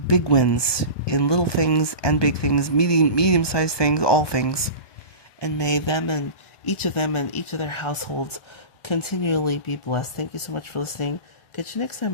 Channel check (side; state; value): right; late; 1.2 ms